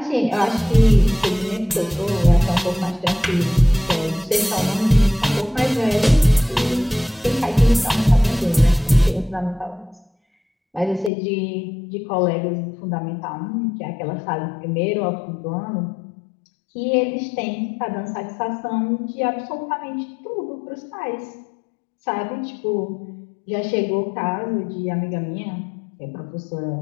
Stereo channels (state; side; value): drops out; right; at 11.1 s